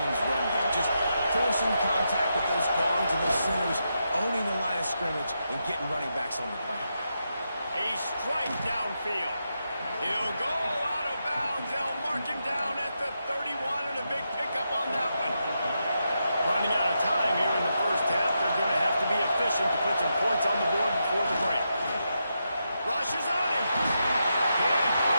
run game. Just forcing contact with those guards and those centers, owning the line of scrimmage, and getting running backs on the ground. A strike downfield. He'll go out of bounds. They'll mark him down at the 31 and a big pickup on that one. Running out of time here in the first half. They're going to have to be efficient to put some points on the board before the break. Rushes on him. Can't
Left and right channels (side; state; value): both; inverted; correlation -0.85